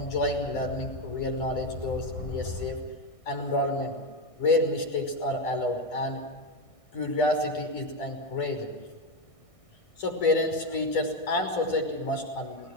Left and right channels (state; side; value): late; right; 1.6 ms